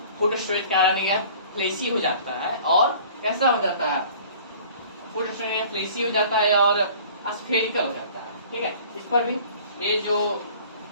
फूड स्टोरेज के कारण यह फ्लेसी हो जाता है, और कैसा हो जाता है, फूड स्टोरेज फ्लेसी हो जाता है और स्फेरिकल हो जाता है, ठीक है। इस पर भी ये जो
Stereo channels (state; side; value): inverted; both; correlation -0.48